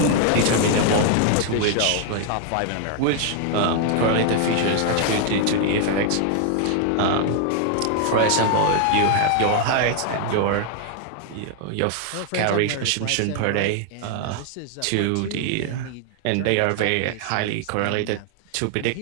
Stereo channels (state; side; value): different; both; correlation 0.00